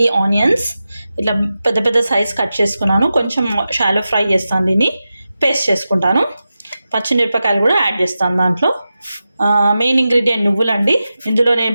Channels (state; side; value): inverted; both; correlation -0.92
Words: ఆనియన్స్, ఇట్లా పెద్ద పెద్ద సైజ్ కట్ చేసుకున్నాను. కొంచెం షాలో ఫ్రై చేస్తాను, దీన్ని పేస్ట్ చేసుకుంటాను. పచ్చిమిరపకాయలు కూడా యాడ్ చేస్తాను దాంట్లో. మెయిన్ ఇంగ్రీడియంట్ నువ్వులండి. ఇందులో నేను